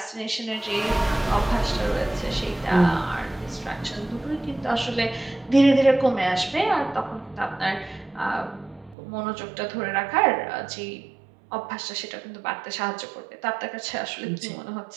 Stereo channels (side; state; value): left; drops out; at 9.0 s